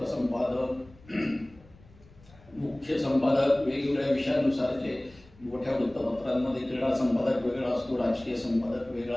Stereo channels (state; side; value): noise; left; rumble, 25 dB below the sound